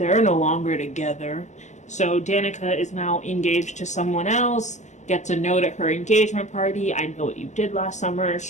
no longer together. So Danica is now engaged to someone else, gets a note at her engagement party. I know what you did last summer.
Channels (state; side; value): late; right; 0.34 ms